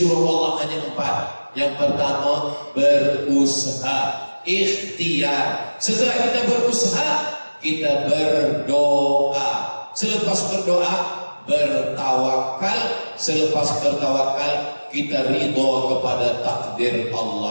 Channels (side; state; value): both; inverted; correlation -1.00